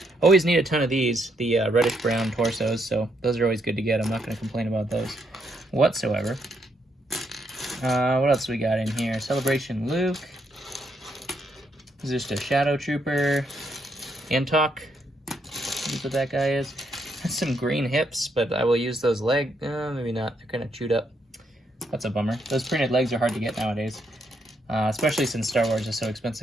Always need a ton of these, the reddish-brown torsos, so those are always good to get. I'm not going to complain about those whatsoever. What else we got in here? Celebration Luke. This is just a Shadow Trooper. Antok. That's what that guy is. Has some green hips, but I will use those legs. Maybe not. They're kind of chewed up. That's a bummer. Those printed legs are hard to get nowadays, especially since Star Wars is so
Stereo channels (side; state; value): both; normal; correlation 0.76